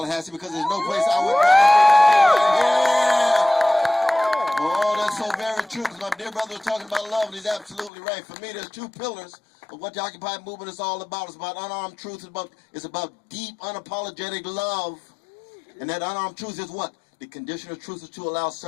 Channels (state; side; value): drops out; right; at 7.9 s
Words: because there's no place I would rather be. Oh, that's so very true, because my dear brother was talking about love, and he's absolutely right. For me, there's two pillars of what the Occupy movement is all about. It's about unarmed truth. It's about deep, unapologetic love. And that unarmed truth is what? The condition of truth is to allow